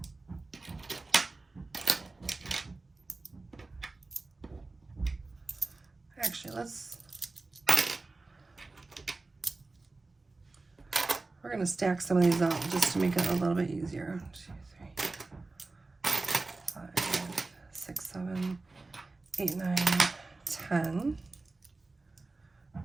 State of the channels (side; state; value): left; quieter; 3.4 dB